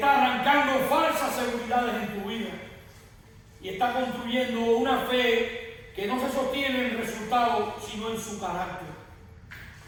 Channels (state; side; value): identical; both; correlation 1.00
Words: arrancando falsas seguridades en tu vida. Y está construyendo una fe que no se sostiene en el resultado, sino en su carácter.